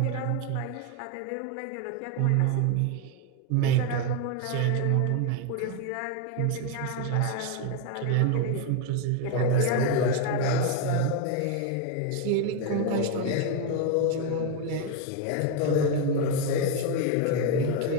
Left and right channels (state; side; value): different; both; correlation 0.02